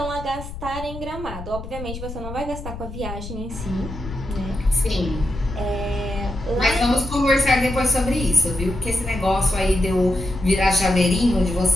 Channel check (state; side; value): noise; left; rumble, 10 dB below the sound